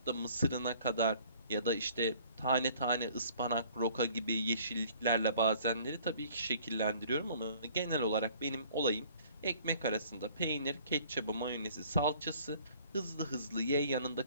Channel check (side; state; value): both; inverted; correlation -0.54